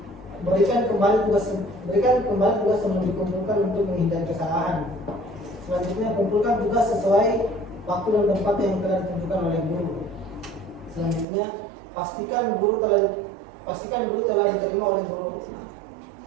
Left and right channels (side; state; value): left; drops out; at 11.2 s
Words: Berikan kembali tugas sebelum dikumpulkan untuk menghindari kesalahan. Selanjutnya, kumpulkan tugas sesuai waktu dan tempat yang telah ditentukan oleh guru. Selanjutnya, pastikan guru telah diterima oleh guru.